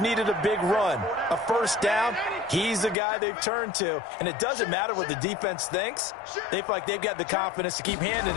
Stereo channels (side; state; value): right; drops out; at 3.0 s